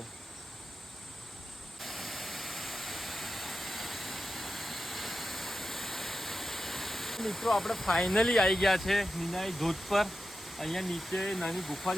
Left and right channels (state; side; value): normal; both; correlation 0.91